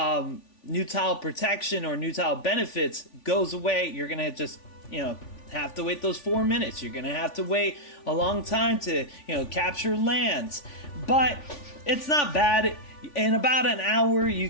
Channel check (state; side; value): late; right; 3.5 ms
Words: protection or new tile benefits goes away, you're going to just have to wait those 4 minutes. You're going to have to wait a long time to capture lands, but it's not bad. In about an hour you